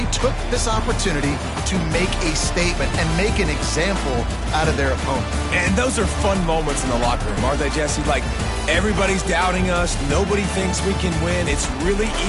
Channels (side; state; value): both; identical; correlation 1.00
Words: took this opportunity to make a statement and make an example out of their opponent. And those are fun moments in the locker room, aren't they, Jesse? Like, everybody's doubting us. Nobody thinks we can win. It's really